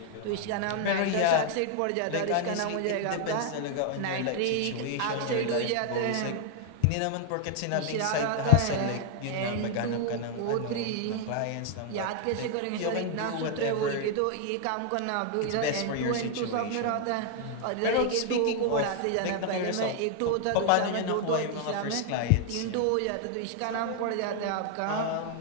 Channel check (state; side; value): different; both; correlation 0.00